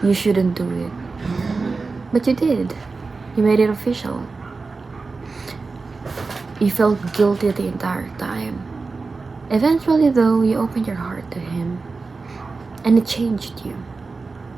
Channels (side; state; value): left; quieter; 4.1 dB